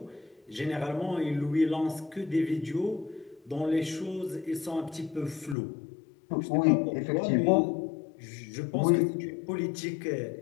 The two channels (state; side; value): drops out; right; at 5.6 s